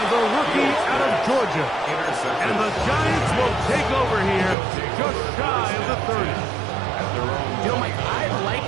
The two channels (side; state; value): left; drops out; at 4.5 s